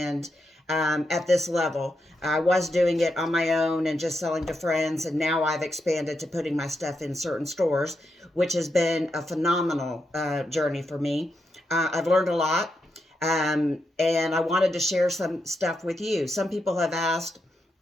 at this level. I was doing it on my own and just selling to friends, and now I've expanded to putting my stuff in certain stores, which has been a phenomenal journey for me. I've learned a lot, and I wanted to share some stuff with you. Some people have asked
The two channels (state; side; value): normal; both; correlation 0.84